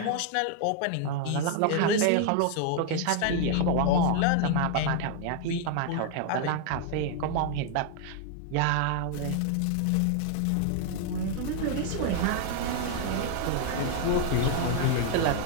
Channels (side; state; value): both; different; correlation 0.00